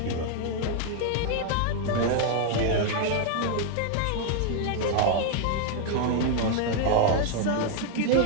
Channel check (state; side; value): different; both; correlation 0.01